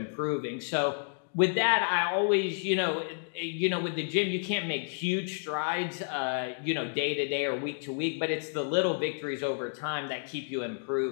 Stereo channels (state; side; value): silent; right; digital silence